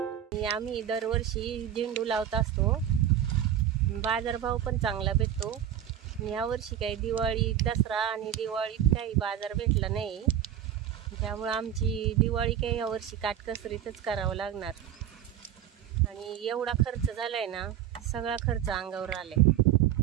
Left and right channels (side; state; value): left; quieter; 10.6 dB